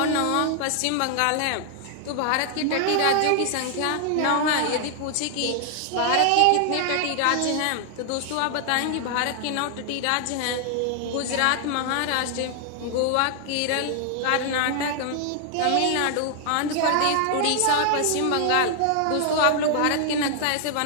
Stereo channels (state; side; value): different; both; correlation 0.00